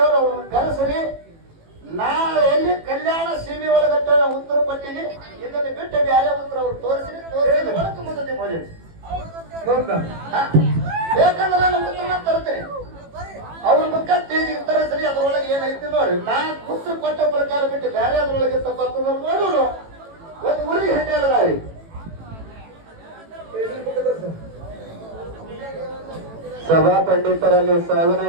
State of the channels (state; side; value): late; left; 18 ms